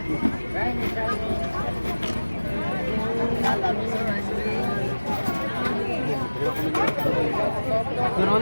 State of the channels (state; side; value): inverted; both; correlation -1.00